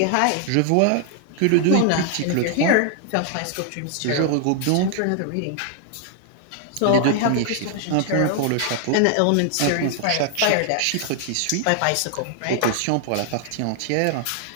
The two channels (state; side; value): different; both; correlation 0.00